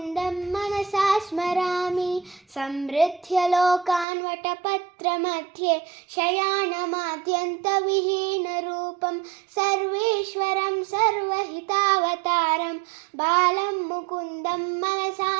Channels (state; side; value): drops out; left; at 4.0 s